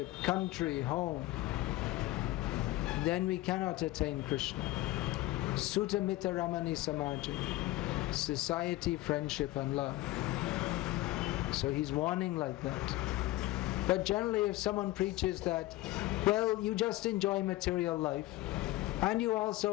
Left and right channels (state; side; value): quieter; right; 17.4 dB